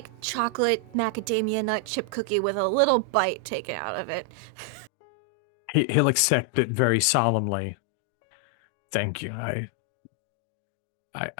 chocolate macadamia nut chip cookie with a little bite taken out of it. He'll accept it very solemnly. Mm-hmm. Thank you. I thought you might like it, cause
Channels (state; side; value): drops out; right; at 4.9 s